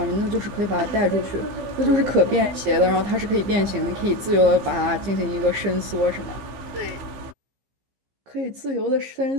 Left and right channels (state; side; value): late; left; 15 ms